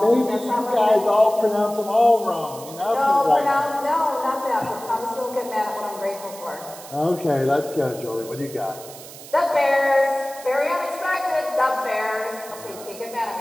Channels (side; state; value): right; noise; hiss, 16 dB below the sound